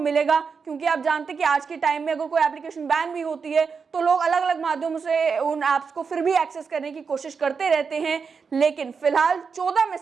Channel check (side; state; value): left; quieter; 5.6 dB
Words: क्योंकि आप जानते हैं कि आज के टाइम में अगर कोई एप्लीकेशन बैन भी होती है तो लोग अलग अलग माध्यमों से उन ऐप्स को फिर भी एक्सेस करने की कोशिश करते रहते हैं। लेकिन फिलहाल 14